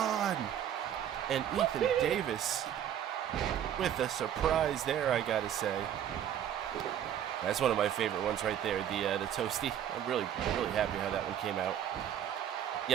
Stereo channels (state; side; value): quieter; left; 10.0 dB